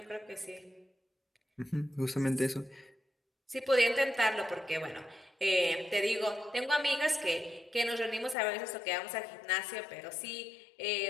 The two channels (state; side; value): drops out; right; at 8.3 s